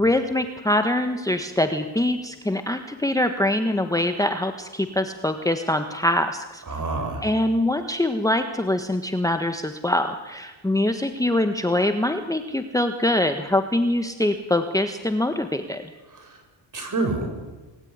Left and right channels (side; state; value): both; normal; correlation 0.61